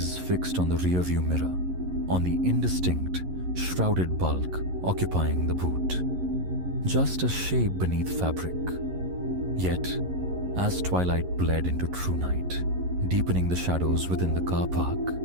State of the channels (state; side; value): late; left; 11 ms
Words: fixed on the rearview mirror, on the indistinct, shrouded bulk occupying the boot. Just a shape beneath fabric. Yet, as twilight bled into true night, deepening the shadows within the car park,